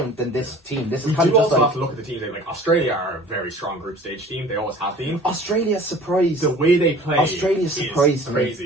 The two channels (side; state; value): both; normal; correlation 0.46